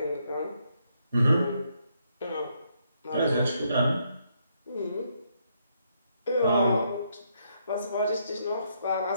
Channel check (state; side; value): inverted; both; correlation -0.75